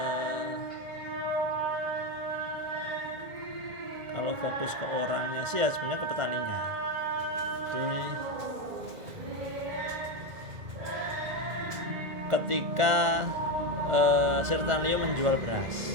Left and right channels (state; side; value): late; left; 1.4 ms